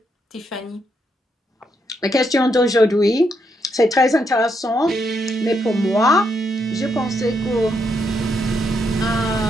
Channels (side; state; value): both; normal; correlation 0.78